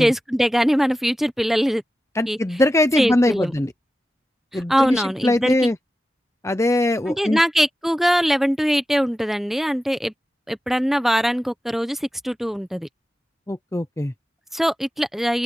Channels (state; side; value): normal; both; correlation 0.92